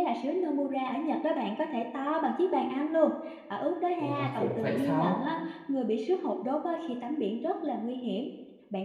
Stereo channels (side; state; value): both; identical; correlation 1.00